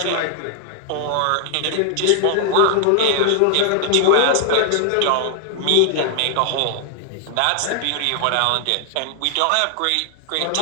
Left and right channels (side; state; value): both; different; correlation 0.00